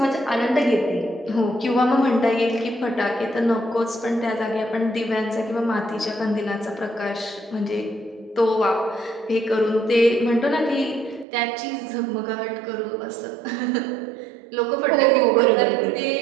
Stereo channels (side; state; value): left; drops out; at 11.2 s